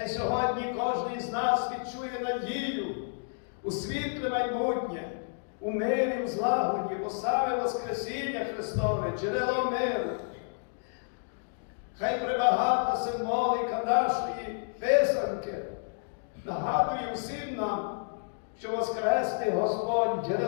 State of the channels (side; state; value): right; silent; digital silence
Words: сьогодні кожен з нас відчує надію у світле майбутнє, у мирі, в злагоді, бо саме Воскресіння Христове, джерело миру. Хай прибагата символіка нашої писанки нагадує всім нам, що воскресний Господь,